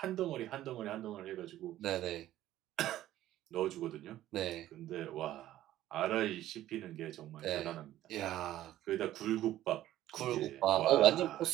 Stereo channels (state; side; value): quieter; left; 13.8 dB